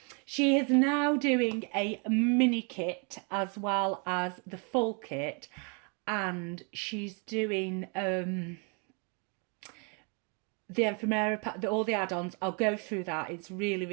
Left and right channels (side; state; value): left; quieter; 36.0 dB